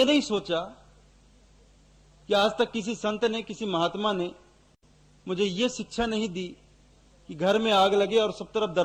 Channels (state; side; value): identical; both; correlation 1.00